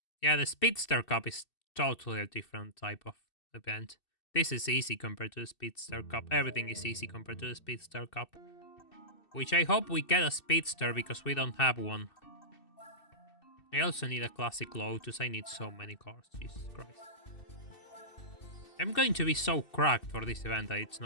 Yeah, the Speedster Cup is totally a different type of event. This is easy compared to the Speedster Cup. Everything is easy compared to the Speedster Cup. Which I hope we get a Speedster because we don't have one. I also need a Classic Lotus. I need so many cars. Jesus Christ. I'm going to be so cracked for this event that it's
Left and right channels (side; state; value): right; late; 2.7 ms